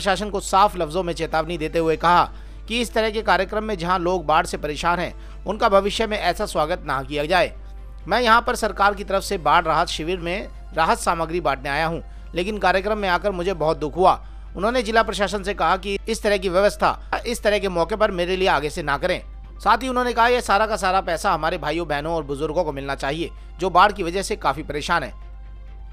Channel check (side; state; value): both; identical; correlation 1.00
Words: को साफ लफ्जों में चेतावनी देते हुए कहा कि इस तरह के कार्यक्रम में जहां लोग बाढ़ से परेशान हैं, उनका भविष्य में ऐसा स्वागत ना किया जाए। मैं यहां पर सरकार की तरफ से बाढ़ राहत शिविर में राहत सामग्री बांटने आया हूं, लेकिन कार्यक्रम में आकर मुझे बहुत दुख हुआ। उन्होंने जिला प्रशासन से कहा कि इस तरह की व्यवस्था इस तरह के मौके पर मेरे लिए आगे से ना करें। साथ ही उन्होंने कहा यह सारा का सारा पैसा हमारे भाइयों बहनों और बुजुर्गों को मिलना चाहिए जो बाढ़ की वजह से काफी परेशान है।